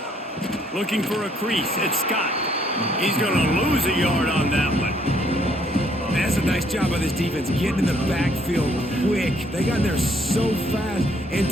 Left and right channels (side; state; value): both; normal; correlation 0.67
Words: Looking for a crease. It's Scott. He's going to lose a yard on that one. That's a nice job by this defense, getting in the backfield quick. They got in there so fast,